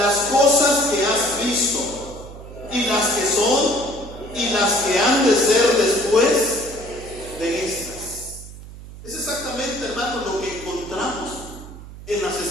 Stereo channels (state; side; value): noise; right; hum, 15 dB below the sound